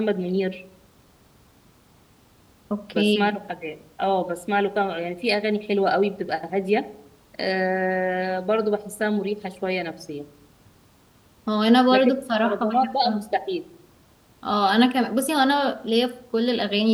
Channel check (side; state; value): both; identical; correlation 1.00